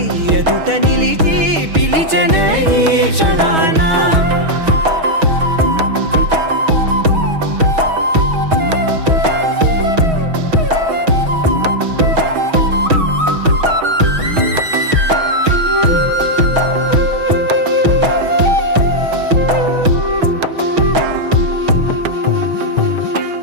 ఎదుట నిలిచి పిలిచనే ఈ క్షణాన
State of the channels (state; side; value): late; left; 6.2 ms